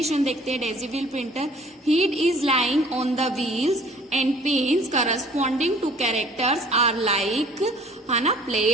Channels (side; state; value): both; normal; correlation 0.52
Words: देखते हैं। Daisy wheel printer, heat is lying on the wheels and pins corresponding to characters are like, है ना,